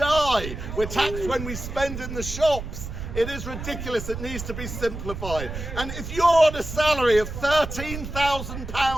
We're taxed when we spend in the shops. It is ridiculous. It needs to be simplified. And if you're on a salary of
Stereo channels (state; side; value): noise; right; rumble, 8 dB below the sound